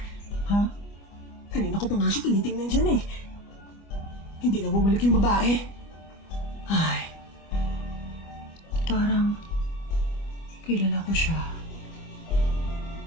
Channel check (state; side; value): late; right; 25 ms